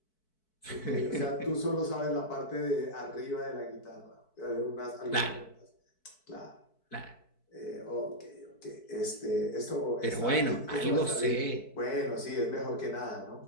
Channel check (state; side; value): late; right; 4.6 ms